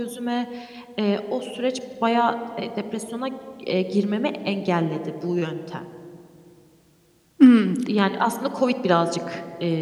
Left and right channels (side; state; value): both; identical; correlation 1.00